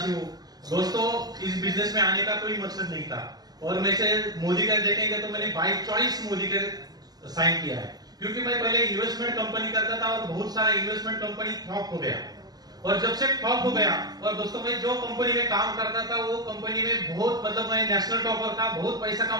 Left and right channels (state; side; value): late; left; 0.19 ms